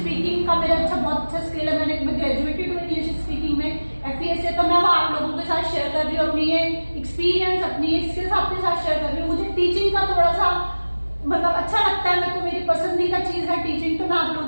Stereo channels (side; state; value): both; inverted; correlation -1.00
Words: का मेरा बहुत अच्छा स्किल है. मैं ग्रेजुएटेड हूँ इंग्लिश स्पीकिंग में FES से. तो मैं वो आप लोगों के साथ शेयर कर रही हूँ अपनी ये एक्सपीरियंस, अपनी ये स्किल्स आपके साथ शेयर कर रही हूँ. मुझे टीचिंग का थोड़ा सा मतलब अच्छा लगता है, मेरे को मेरी पसंदीदा चीज है टीचिंग, तो मैं आप लोगों